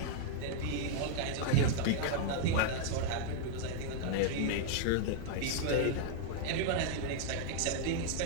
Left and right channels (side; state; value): both; different; correlation -0.01